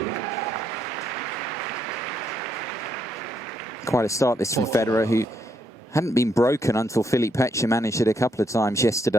Quite a start this from Federer, who hadn't been broken until Philippe Pechner managed it a couple of times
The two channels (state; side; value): normal; both; correlation 0.75